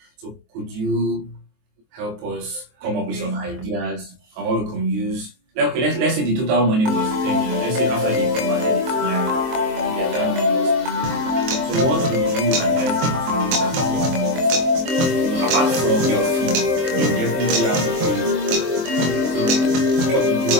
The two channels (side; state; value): left; late; 23 ms